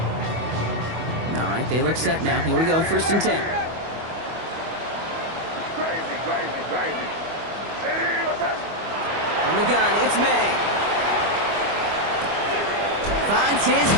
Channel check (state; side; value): late; left; 25 ms